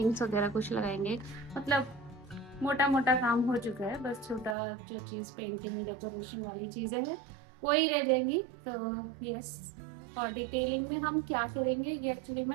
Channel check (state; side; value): drops out; left; at 4.5 s